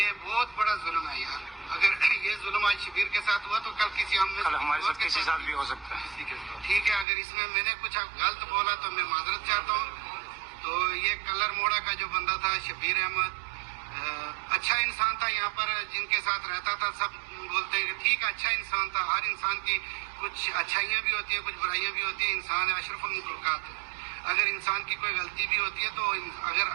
बहुत बड़ा जुल्म है यार। अगर ये जुल्म आज शबीर के साथ हुआ तो कल किसी हमारे साथ किसी साथ भी हो सकता है। ठीक है, अगर इसमें मैंने कुछ गलत बोला तो मैं माजरत चाहता हूँ। तो ये कलर मोड़ा का जो बंदा था शबीर अहमद, अच्छा इंसान था। यहाँ पर जिनके साथ रहता था सब बोलते हैं कि ठीक अच्छा इंसान था। हर इंसान की कुछ अच्छाइयाँ भी होती हैं, कुछ बुराइयाँ भी होती हैं। इंसान है, अशरफुल मखलूकात है। अगर इंसान की कोई गलती भी होती है तो अगर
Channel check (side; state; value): left; drops out; at 7.1 s